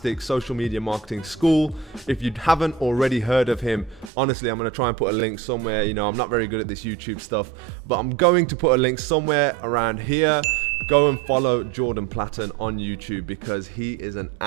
social media marketing school. If you haven't already heard of him, honestly, I'm going to try and put a link somewhere. You know, I'm not very good at this YouTube stuff, but I'm going to put a link somewhere around here. Go and follow Jordan Platten on YouTube because he is an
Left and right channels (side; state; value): left; drops out; at 4.1 s